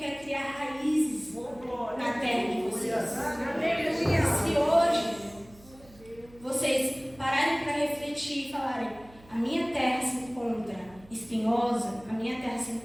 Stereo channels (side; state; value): right; noise; hum, 24 dB below the sound